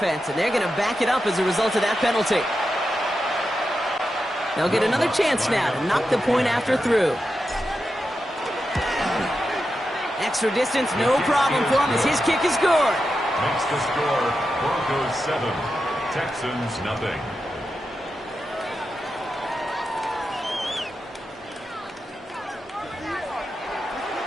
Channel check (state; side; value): normal; both; correlation 0.89